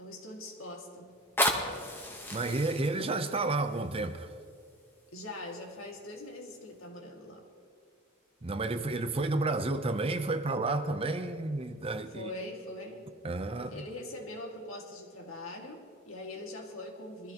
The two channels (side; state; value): both; normal; correlation 0.40